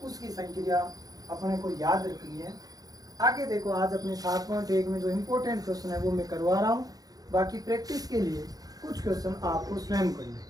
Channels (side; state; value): left; late; 0.18 ms